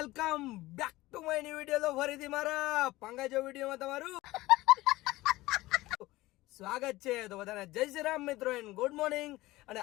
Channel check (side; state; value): right; quieter; 18.7 dB